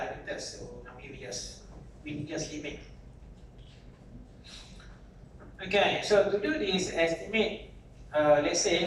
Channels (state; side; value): identical; both; correlation 1.00